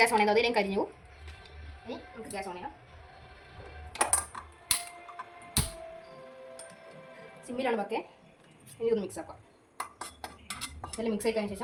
ഓൺ ചെയ്താൽ അതിലേക്ക് കരിഞ്ഞു. ഇനി നമുക്ക് ഗ്യാസ് ഓൺ ചെയ്യാം. സിമ്മിലാണ് പക്കെ. ഇനി ഇതൊന്ന് മിക്സ് ആക്കാം. ഇതെല്ലാം മിക്സ് ആക്കിയതിന്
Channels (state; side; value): identical; both; correlation 1.00